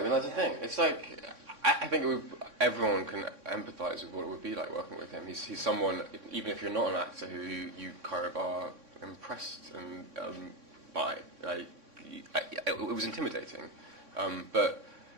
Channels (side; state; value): left; late; 3.6 ms